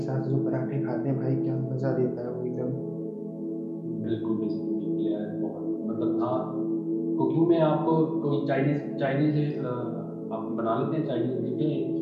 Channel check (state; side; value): identical; both; correlation 1.00